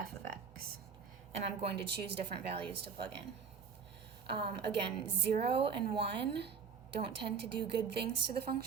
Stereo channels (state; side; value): quieter; left; 6.1 dB